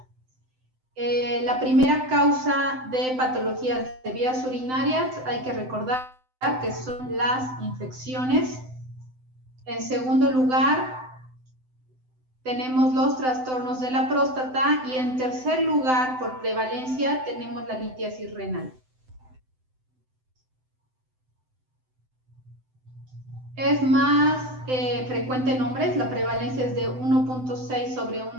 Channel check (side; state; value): left; late; 7.8 ms